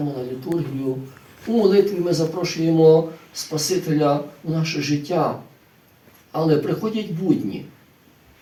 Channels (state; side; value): identical; both; correlation 1.00